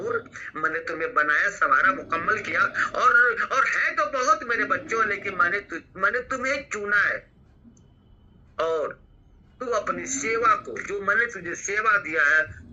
मैंने तुम्हें बनाया, संवारा, मुकम्मल किया, और है तो बहुत मेरे बच्चों, लेकिन मैंने तुम्हें चुना है। और तू अपनी सेवा को, जो मैंने तुझे सेवा दिया है,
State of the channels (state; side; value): identical; both; correlation 1.00